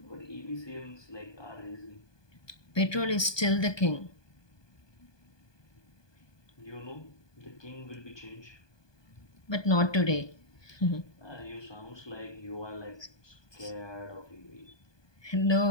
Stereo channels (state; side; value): late; right; 1.2 ms